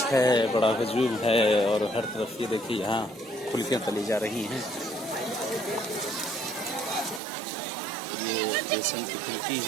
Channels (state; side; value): drops out; left; at 7.2 s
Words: है, बड़ा हजूम है और हर तरफ ये देखिए यहाँ फुल्कियाँ तली जा रही हैं। ये बेसन की फुल्की